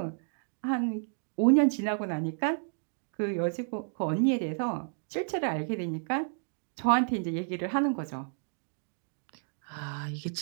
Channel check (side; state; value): left; silent; digital silence